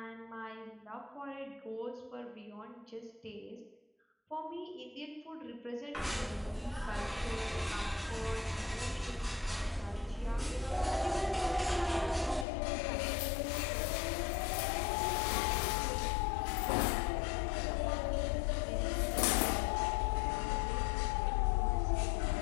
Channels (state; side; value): drops out; right; at 12.5 s